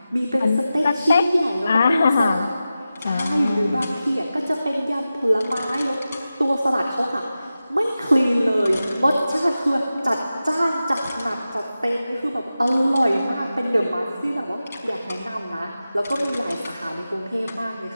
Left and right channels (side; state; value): both; inverted; correlation -0.93